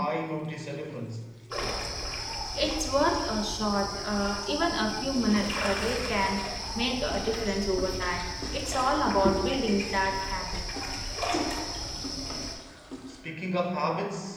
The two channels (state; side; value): identical; both; correlation 1.00